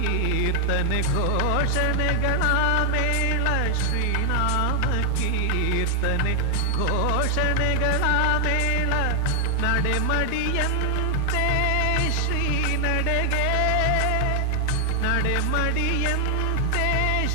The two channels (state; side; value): different; both; correlation 0.00